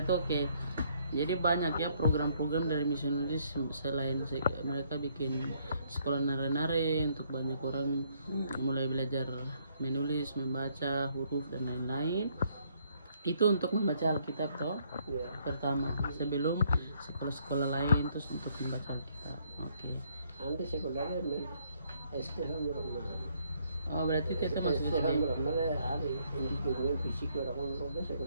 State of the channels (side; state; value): both; inverted; correlation -0.69